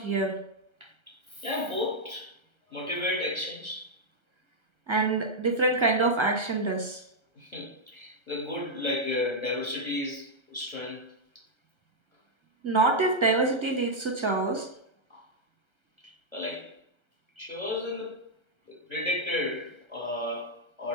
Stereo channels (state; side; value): late; left; 1.3 ms